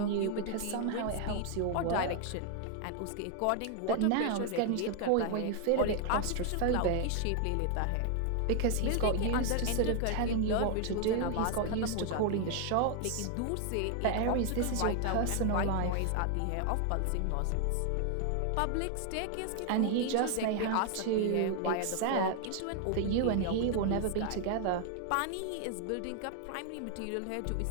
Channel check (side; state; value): both; different; correlation 0.00